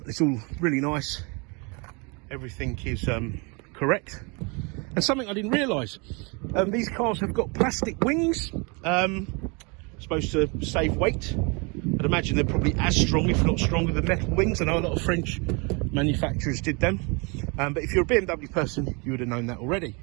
all really nice. Everything is correct. And something I didn't realise, these cars have got plastic wings, supposed to save weight. I'd imagine they're probably as strong, if not stronger, than metal wings. I know a lot of French manufacturers did them, but if you're a BMW person, you would have known that already.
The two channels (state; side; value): quieter; left; 31.1 dB